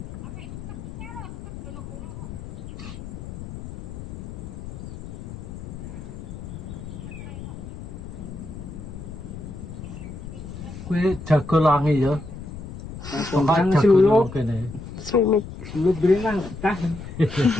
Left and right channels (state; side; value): noise; left; rumble, 10 dB below the sound